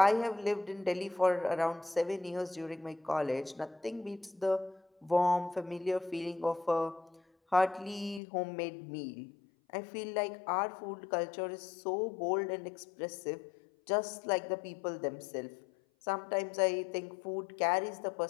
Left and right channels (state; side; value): drops out; right; at 8.2 s